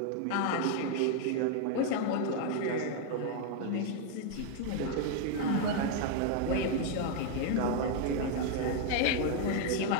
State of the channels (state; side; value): different; both; correlation 0.00